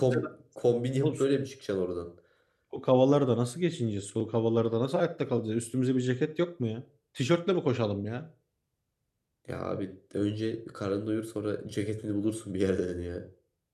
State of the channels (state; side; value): identical; both; correlation 1.00